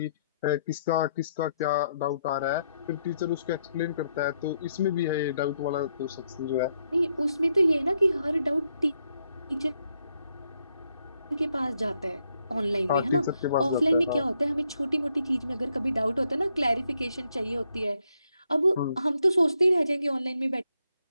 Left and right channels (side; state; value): both; inverted; correlation -0.77